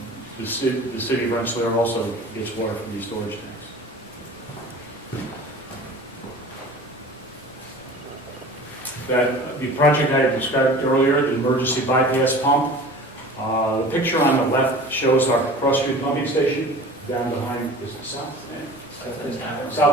the city of Rensselaer also gets water from these storage tanks. The project I described earlier, the emergency bypass pump, the picture on the left shows our Cross Street pumping station down behind, is it south?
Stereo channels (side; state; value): both; normal; correlation 0.40